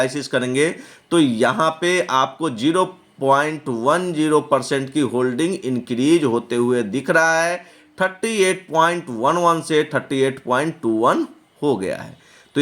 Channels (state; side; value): identical; both; correlation 1.00